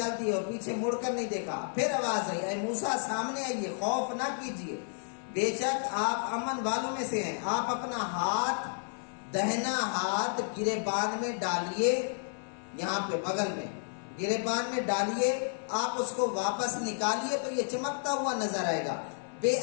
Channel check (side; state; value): right; silent; 57 dB below the other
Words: ہے اور پیچھے مڑ کر نہیں دیکھا۔ پھر آواز آئی، اے موسیٰ سامنے آئیے، خوف نہ کیجیے، بے شک آپ امن والوں میں سے ہیں۔ آپ اپنا ہاتھ، دہنا ہاتھ گریبان میں ڈالیے، یہاں پہ بغل میں گریبان میں ڈالیے، آپ اس کو واپس نکالیے تو یہ چمکتا ہوا نظر آئے گا، بے